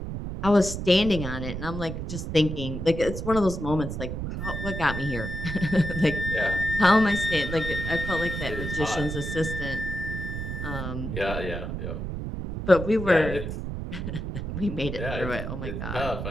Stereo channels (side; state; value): right; noise; rumble, 5 dB below the sound